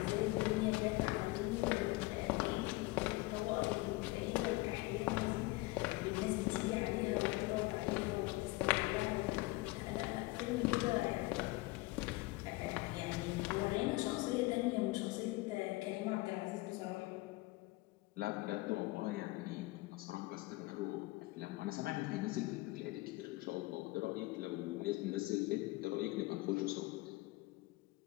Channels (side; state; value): right; quieter; 21.5 dB